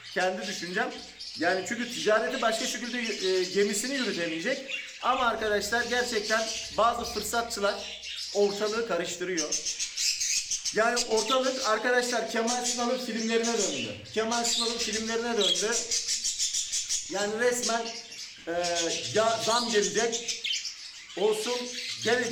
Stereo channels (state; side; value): identical; both; correlation 1.00